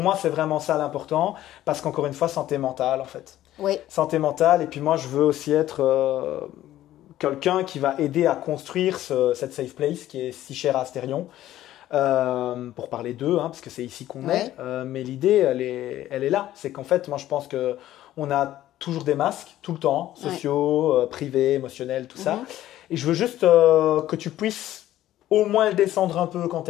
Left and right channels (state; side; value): quieter; right; 13.6 dB